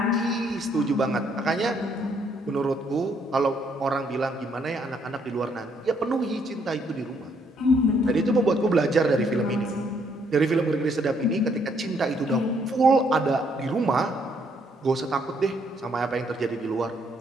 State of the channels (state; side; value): normal; both; correlation 0.70